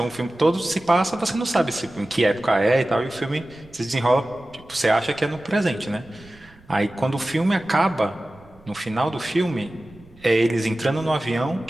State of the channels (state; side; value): noise; right; rumble, 26 dB below the sound